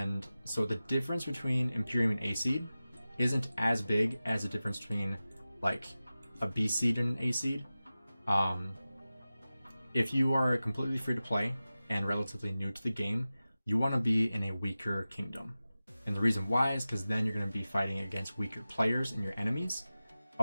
so the difference between Imperium and A seed isn't as big as the difference between like a B seed and an A seed. If you are completely free to play and relatively new to the game, you want to be in a weaker kingdom. And the reason why is because then you're going to be fighting against weaker players and your enemies.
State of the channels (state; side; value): inverted; both; correlation -0.96